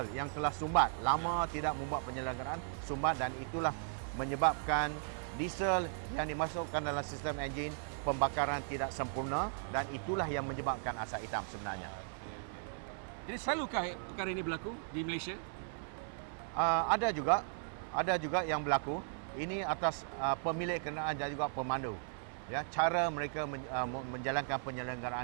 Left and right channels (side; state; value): left; silent; 53 dB below the other